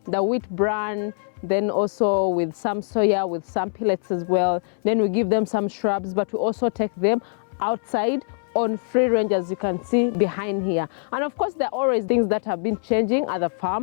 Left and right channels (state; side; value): silent; right; 63 dB below the other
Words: wheat bran, then also with some soya, with some pellets as well. Then we give them some shrubs, but we also take them outside on free range, as you can see behind here. And of course, there are always things that have been changing at the